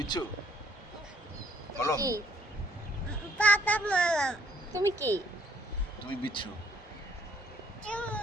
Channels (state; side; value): normal; both; correlation 0.65